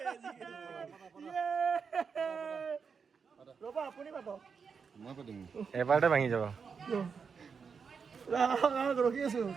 ৰ'বা আপুনি পাব এবাৰতে ভাঙি যাব ৰখি আছো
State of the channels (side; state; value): left; quieter; 5.9 dB